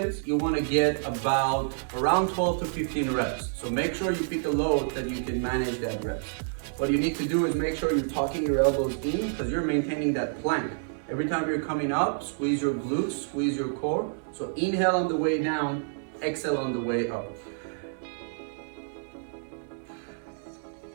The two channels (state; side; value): silent; left; digital silence